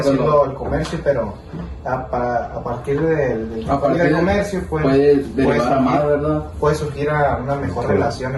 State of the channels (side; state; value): both; identical; correlation 1.00